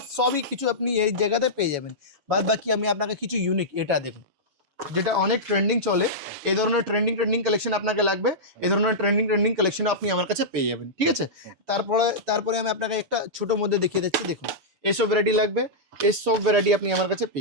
সবই কিছু আপনি এই জায়গাতে পেয়ে যাবেন। বাদ বাকি আমি আপনাকে কিছু ইউনিক, এটা দেখুন যেটা অনেক ট্রেন্ডিং চলে, এই ধরনের ট্রেন্ডিং কালেকশন আপনাকে লাগবে, এই ধরনের ট্রেন্ডিং কালেকশন আপনি আমার কাছে পেয়ে যাবেন। ঠিক আছে, তারপরে আমি আপনাকে একটা ছোটোর মধ্যে দেখিয়ে দিচ্ছি। দেখুন এইসব ভ্যারাইটি লাগবে, এইসব ভ্যারাইটি আপনি আমার কাছে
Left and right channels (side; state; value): left; late; 7.1 ms